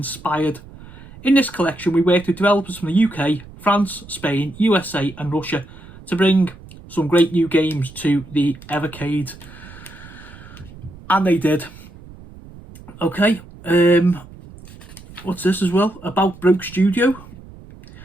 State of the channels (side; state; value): right; noise; rumble, 19 dB below the sound